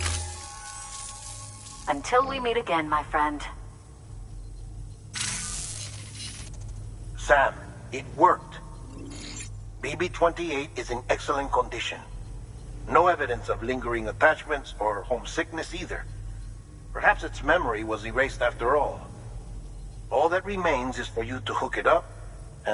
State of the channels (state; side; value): identical; both; correlation 1.00